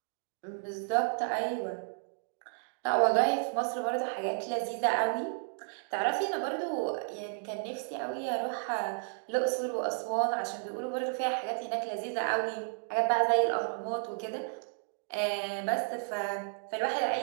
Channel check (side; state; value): left; silent; digital silence